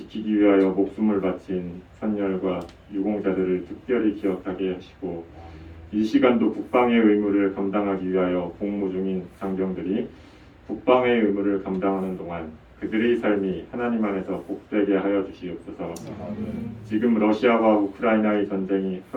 위하여 목숨을 바친 선열과 유공자들을 특별히 기억하게 하시고 이 시간도 국방의 의무를 감당하기 위하여 복무 중인 장병들이 국방의 의무를 감당하는 동안 그들의 삶이 하나님 안에서 복되게 하여 주시옵소서. 지금 러시아와 우크라이나의 전쟁이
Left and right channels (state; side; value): identical; both; correlation 1.00